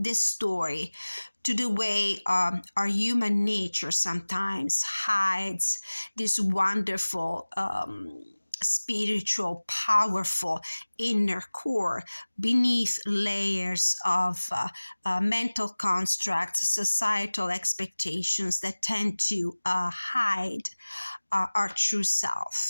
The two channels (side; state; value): both; inverted; correlation -1.00